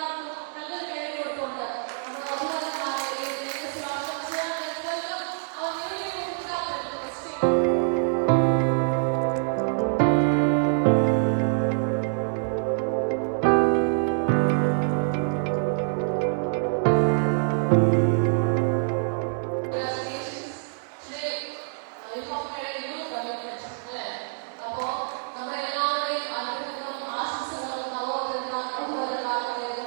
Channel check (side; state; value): left; silent; digital silence